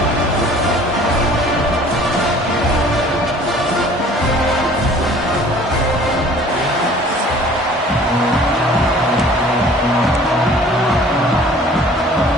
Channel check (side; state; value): both; normal; correlation 0.50